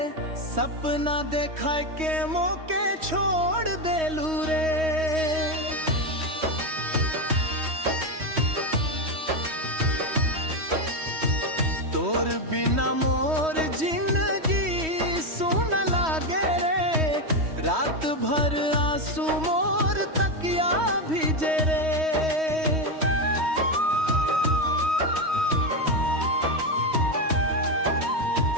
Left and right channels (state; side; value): late; left; 3.1 ms